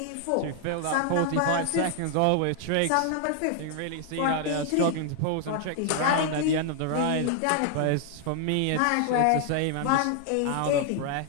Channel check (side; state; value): both; different; correlation 0.00